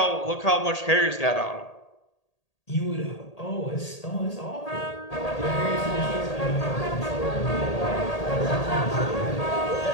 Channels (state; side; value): late; right; 1.8 ms